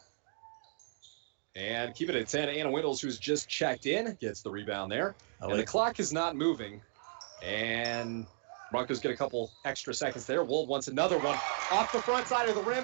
And keep it at 10. Anna Windles, who's just checked in, gets the rebound there. And the clock is not moving. And Broncos get a couple extra seconds there. Wold wants another one off the front side of the rim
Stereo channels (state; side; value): silent; left; digital silence